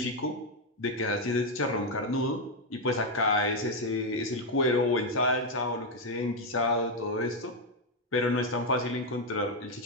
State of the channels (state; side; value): normal; both; correlation 0.04